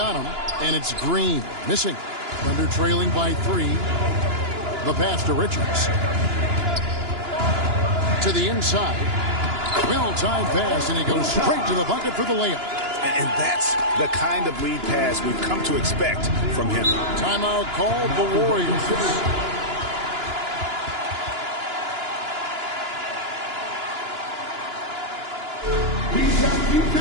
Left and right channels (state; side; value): late; left; 2.9 ms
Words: him, and it's Green. Missing. Thunder trailing by 3. The pass to Richards. To the inside. Well-timed pass, and he goes straight to the bucket for the layup. And that's the kind of lead pass we've come to expect from him. Timeout called the Warriors. He's got